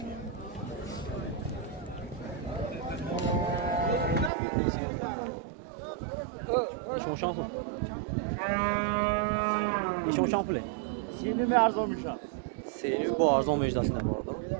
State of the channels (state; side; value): drops out; left; at 4.3 s